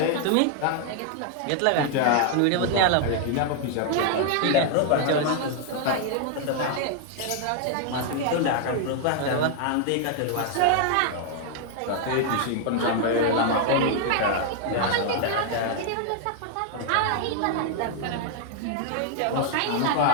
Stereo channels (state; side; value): different; both; correlation 0.00